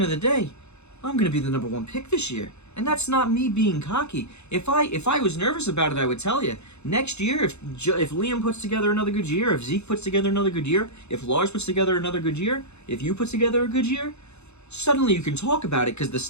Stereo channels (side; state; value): right; late; 0.81 ms